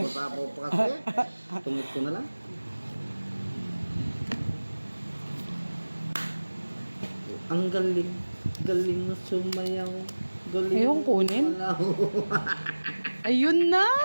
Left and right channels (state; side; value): inverted; both; correlation -1.00